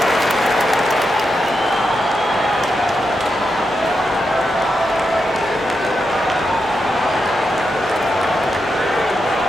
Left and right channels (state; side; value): normal; both; correlation 0.86